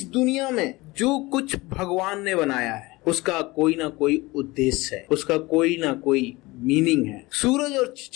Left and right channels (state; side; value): quieter; right; 21.7 dB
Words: दुनिया में जो कुछ भगवान ने बनाया है उसका कोई ना कोई उद्देश्य है, उसका कोई ना कोई मीनिंग है। सूरज और